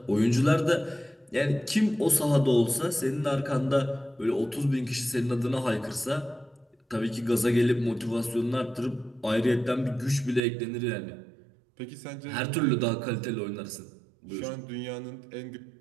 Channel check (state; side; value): drops out; left; at 10.4 s